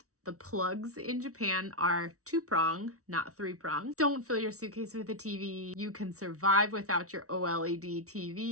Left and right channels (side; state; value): left; late; 0.65 ms